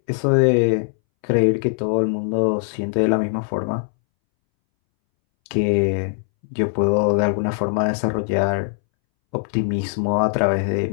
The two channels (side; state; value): right; silent; 63 dB below the other